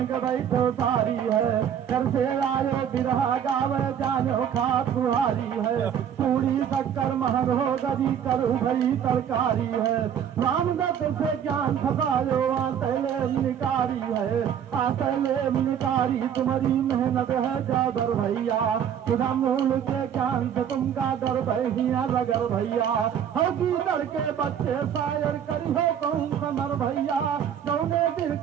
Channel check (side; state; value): left; quieter; 8.9 dB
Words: के बैठो सारी है, घर से आयो बिरहा गावे जानो खात बुहारी है, पूरी शक्कर महर हो गरी करू भई तरकारी है, रामदत्त से ज्ञान फसायो आतले निकारी है, आतले निकारी तुम्हारी मेहनत है जादर भैया, खुदा मूल के ज्ञान से तुमका डर भैया रगर भैया, हकी डर के बच्चे शायर करी हो कौन समर भैया, कौने दिल